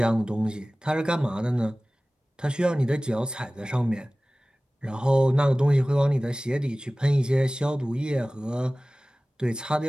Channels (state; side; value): normal; both; correlation 0.98